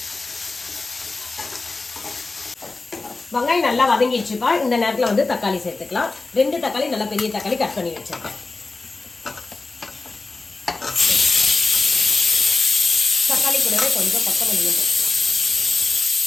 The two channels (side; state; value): right; quieter; 3.7 dB